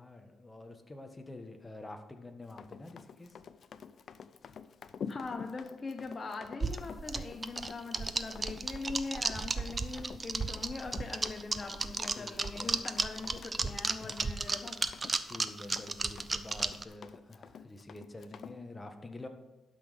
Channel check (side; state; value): both; normal; correlation 0.90